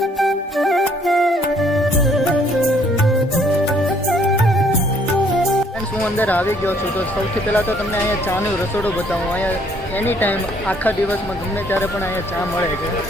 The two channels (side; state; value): both; normal; correlation 0.63